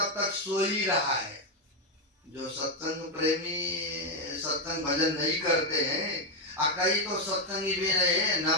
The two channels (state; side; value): normal; both; correlation 0.04